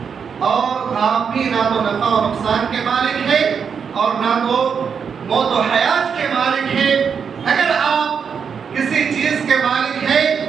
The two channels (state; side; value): quieter; left; 6.6 dB